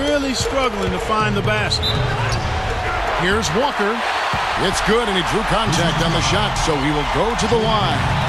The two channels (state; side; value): identical; both; correlation 1.00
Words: struggling to find the basket. Here's Walker. It's good, and he drew contact on the shot, so he will go to the line.